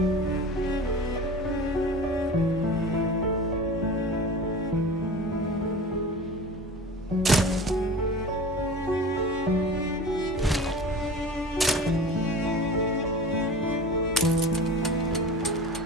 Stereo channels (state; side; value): normal; both; correlation 0.36